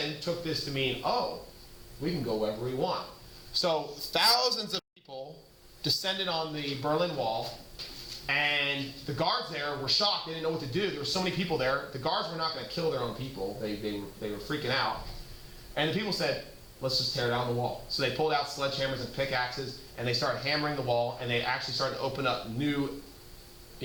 took this to mean, oh, we can go wherever we want. So thousands of people descended on the Berlin Wall, and the guards there were shocked. They didn't know what to do. There were so many people there. The guards were not going to kill their own people. They were freaking out. And the people said, let's just tear down the wall. So they pulled out sledgehammers and pickaxes, and they started hammering the wall, and they actually started to open up new,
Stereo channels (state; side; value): identical; both; correlation 1.00